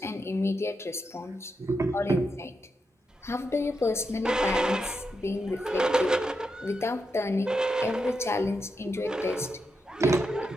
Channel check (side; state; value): both; normal; correlation 0.85